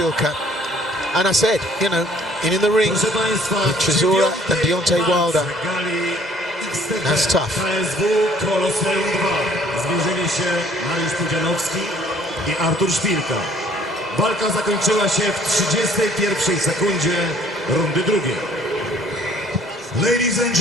And I said, in the ring with Chisora and Deontay Wilder, that's tough. Zmierzyli się Mariusz Pudzianowski i Artur Szpilka. Walka zakończyła się w 31 sekundzie rundy drugiej. Ladies and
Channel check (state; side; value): normal; both; correlation 0.58